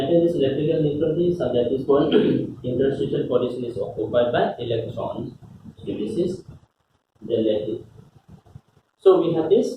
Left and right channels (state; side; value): identical; both; correlation 1.00